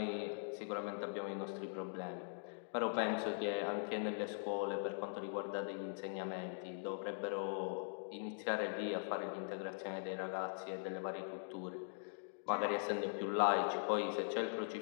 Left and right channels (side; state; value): right; silent; digital silence